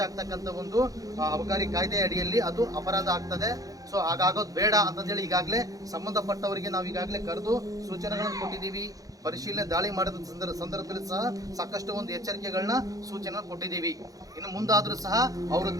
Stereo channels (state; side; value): late; left; 0.17 ms